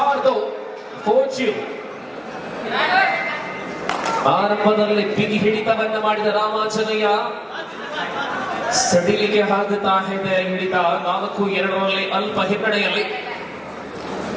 4-2. ಆರಂಭದಲ್ಲಿ ಬಿಗಿ ಹಿಡಿತವನ್ನು ಮಾಡಿದ ರಾಮಾಂಜನೇಯ ಸಡಿಲಿಗೆ ಹಾಕುತ್ತಾ ಇದೆ. ಹಿಡಿತ 4-2 ಅಲ್ಪ ಹಿನ್ನಡೆಯಲ್ಲಿ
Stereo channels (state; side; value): identical; both; correlation 1.00